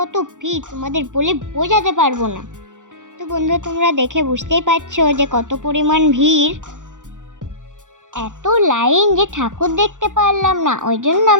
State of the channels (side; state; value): left; late; 0.86 ms